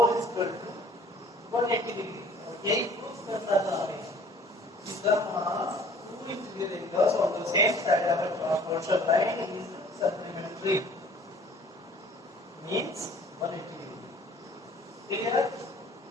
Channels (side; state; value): both; normal; correlation 0.52